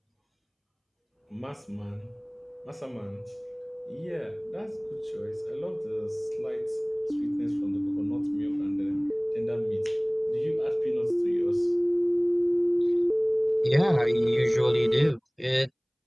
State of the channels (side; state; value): both; identical; correlation 1.00